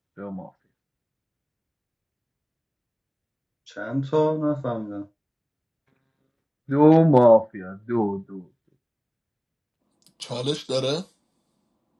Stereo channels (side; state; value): both; identical; correlation 1.00